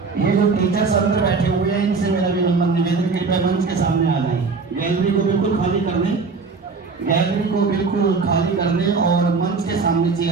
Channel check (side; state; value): left; quieter; 4.5 dB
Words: ये जो टीचर्स अंदर बैठे हुए हैं इनसे मेरा भी निवेदन कृपया मंच के सामने आ जाए। गैलरी को बिल्कुल खाली कर दें, गैलरी को बिल्कुल खाली कर दें और मंच के सामने